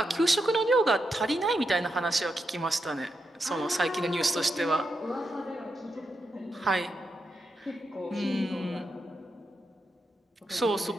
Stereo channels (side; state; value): both; normal; correlation 0.84